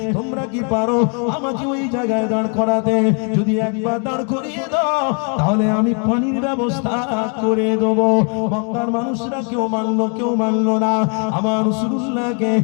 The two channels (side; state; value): right; quieter; 39.2 dB